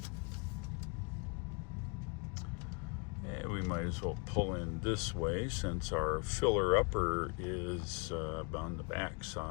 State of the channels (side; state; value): right; quieter; 33.4 dB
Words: We might as well pull in this way since our filler upper is on the back